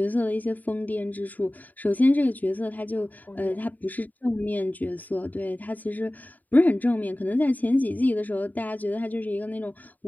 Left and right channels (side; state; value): right; late; 0.082 ms